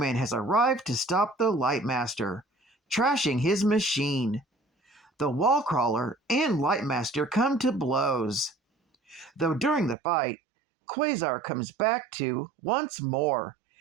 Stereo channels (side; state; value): left; drops out; at 10.0 s